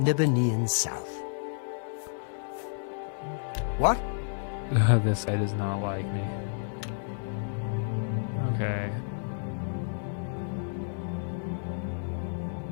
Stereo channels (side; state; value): right; silent; digital silence